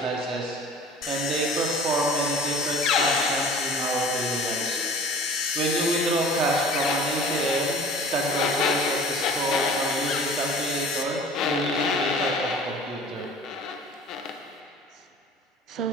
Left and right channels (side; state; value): both; normal; correlation 0.45